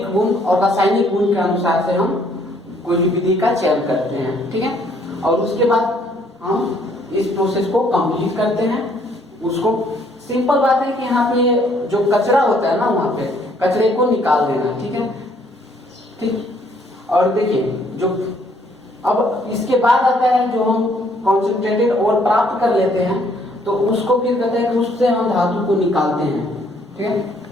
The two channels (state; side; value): normal; both; correlation 0.65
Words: गुण और रासायनिक गुण के अनुसार से हम कोई भी विधि का चयन करते हैं, ठीक है। और उसके बाद हम इस प्रोसेस को कंप्लीट करते हैं। उसको सिंपल बात है कि यहाँ पे जो कचरा होता है ना, वहां पे कचरे को निकाल देना, ठीक है, ठीक। और देखिए जो अब इसके बाद आता है जो हम कॉन्सेंट्रेटेड और प्राप्त कर लेते हैं, तो उसको फिर कहते हैं कि उससे हम धातु को निकालते हैं, ठीक है।